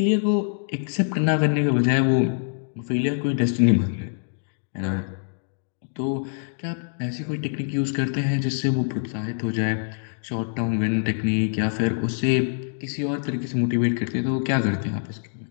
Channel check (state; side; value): silent; right; digital silence